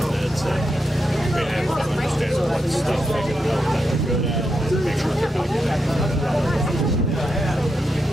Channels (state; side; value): normal; both; correlation 0.84